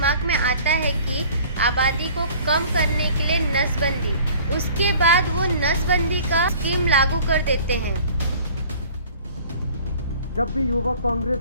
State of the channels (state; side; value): inverted; both; correlation -0.48